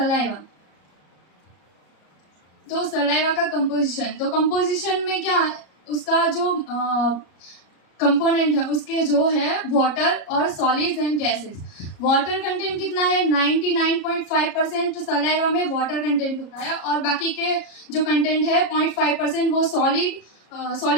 तो सलाइवा का कंपोजिशन, तो कंपोजिशन में क्या उसका जो कंपोनेंट है उसके जो है वाटर और solids and gases. Water content कितना है? 99.5% सलाइवा में वाटर कंटेंट होता है और बाकी के जो कंटेंट है 0.5% वो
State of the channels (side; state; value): right; late; 33 ms